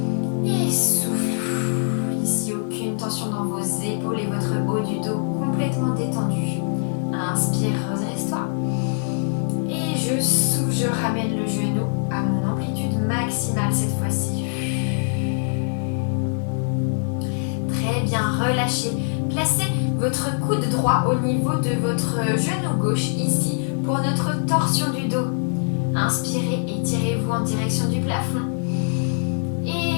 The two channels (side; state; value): right; silent; digital silence